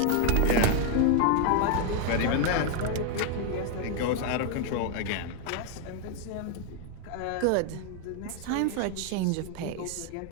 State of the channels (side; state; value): both; different; correlation 0.00